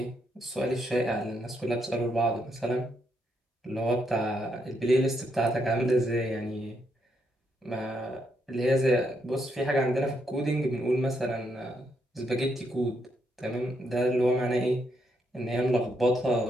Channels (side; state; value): both; normal; correlation 0.78